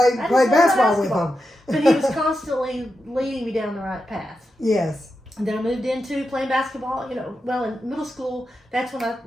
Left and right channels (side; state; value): both; normal; correlation 0.88